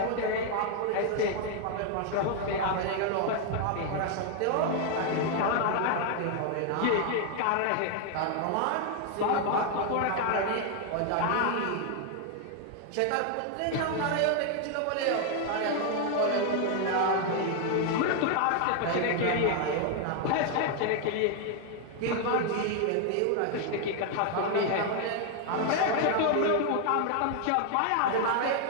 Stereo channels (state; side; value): different; both; correlation 0.00